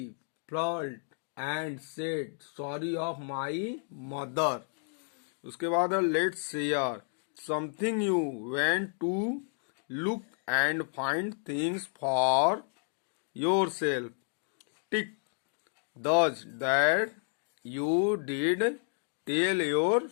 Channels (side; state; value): right; silent; 57 dB below the other